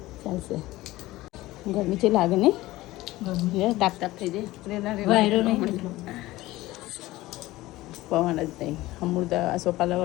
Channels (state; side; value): quieter; right; 17.9 dB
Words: ચાલશે ગરમી છે લાગે ને તાપ તાપ થઈ જાય વાયરો નહીં પવન જ નહીં અમૃત આ સોપાલા